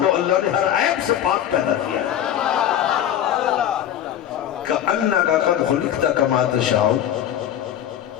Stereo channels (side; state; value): right; quieter; 10.7 dB